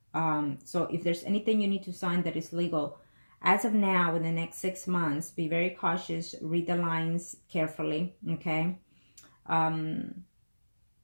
So if there's anything you need to sign that is legal, as of now, in the next 6 months, be very cautious. Read the lines carefully, okay?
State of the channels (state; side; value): inverted; both; correlation -1.00